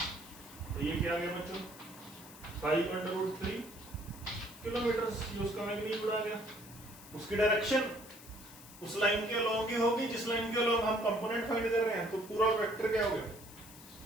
तो ये क्या आ गया बच्चों, 5/√3 किलोमीटर, ये उसका मैग्नीट्यूड आ गया। उसकी डायरेक्शन उस लाइन के अलोंग ही होगी जिस लाइन के अलोंग हम कंपोनेंट फाइंड कर रहे हैं। तो पूरा वेक्टर क्या हो गया,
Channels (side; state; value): left; noise; hiss, 18 dB below the sound